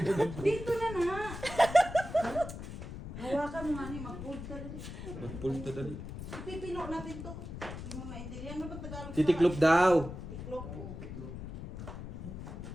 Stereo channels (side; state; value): left; noise; rumble, 9 dB below the sound